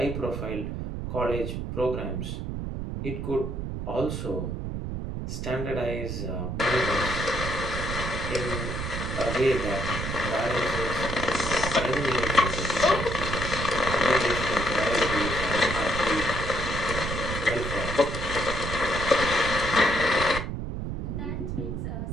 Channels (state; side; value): noise; right; rumble, 4 dB below the sound